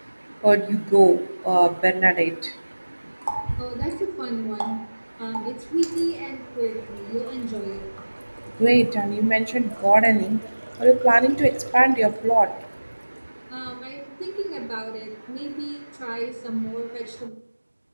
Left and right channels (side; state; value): both; inverted; correlation -1.00